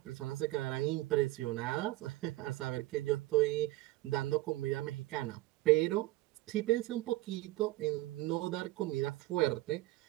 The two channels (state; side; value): quieter; left; 18.4 dB